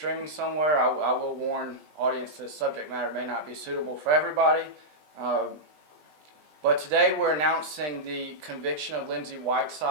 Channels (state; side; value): late; left; 20 ms